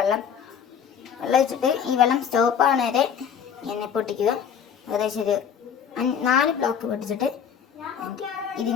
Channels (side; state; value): right; quieter; 7.8 dB